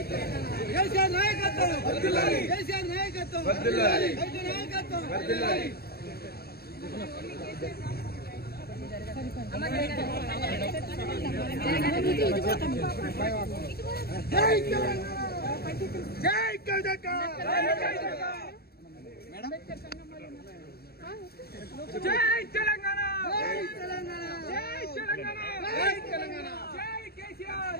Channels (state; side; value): late; right; 0.46 ms